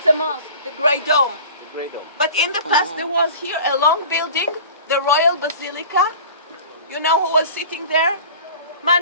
Mosque, the Great Dome. But in the past there was here a long building, the Royal Basilica. You know who was sitting there?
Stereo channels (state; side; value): inverted; both; correlation -0.41